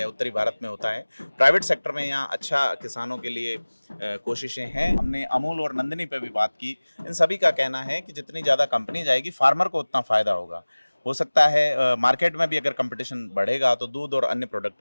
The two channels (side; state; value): both; inverted; correlation -1.00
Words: उत्तरी भारत में होता है। प्राइवेट सेक्टर में यहाँ अच्छा किसानों के लिए कोशिशें हैं। हमने अमूल और नंदिनी पे भी बात की। इन सभी का कहना है कि जितनी ज़्यादा कंपनी जाएगी फार्मर को उतना फ़ायदा होगा। हो सकता है मार्केट में भी अगर कंपटीशन बढ़ेगा तो दूध और अन्य प्रोडक्ट